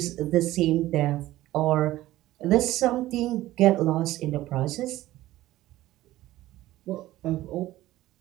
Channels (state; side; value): quieter; left; 15.9 dB